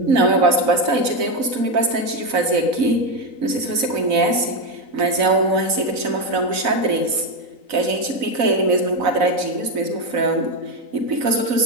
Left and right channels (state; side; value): late; left; 4.0 ms